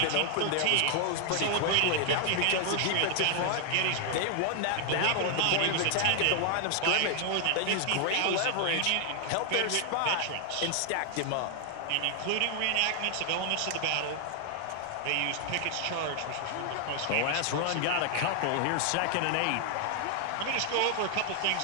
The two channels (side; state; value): both; different; correlation 0.00